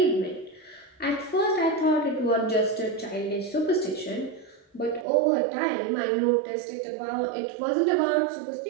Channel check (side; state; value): left; drops out; at 5.1 s